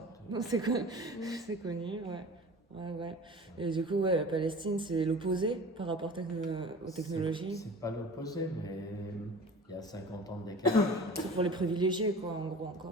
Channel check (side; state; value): both; normal; correlation 0.40